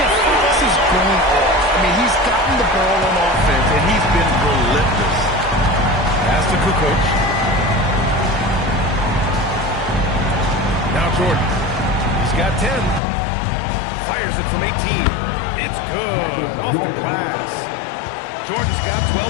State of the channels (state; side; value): drops out; right; at 13.0 s